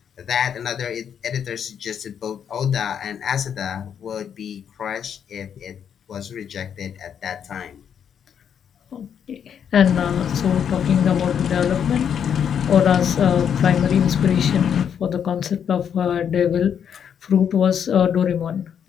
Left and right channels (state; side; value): quieter; right; 8.2 dB